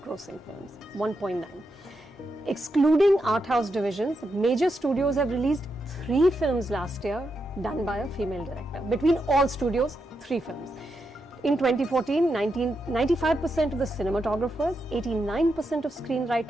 films. 1.9. Excluding art house divisions, major studios have released 3 films last year done by a female director. Between all studios, 3 films. In 2014, 95% of the cinematographers, 89% of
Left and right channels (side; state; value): both; normal; correlation 0.84